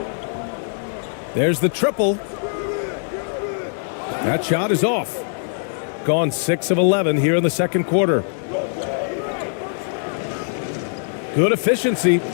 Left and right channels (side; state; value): right; silent; 64 dB below the other